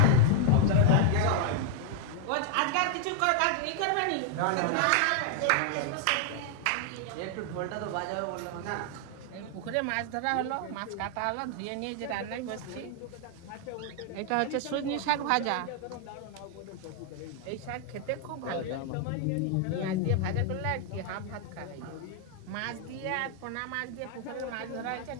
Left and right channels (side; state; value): both; different; correlation 0.00